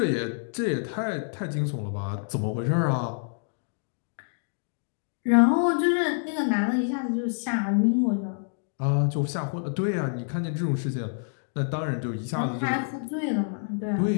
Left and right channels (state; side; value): silent; right; digital silence